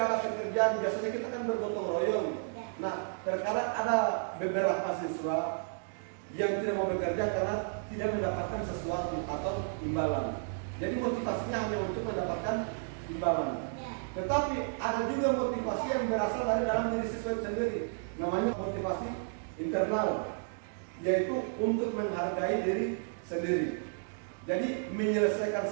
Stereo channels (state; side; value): silent; left; digital silence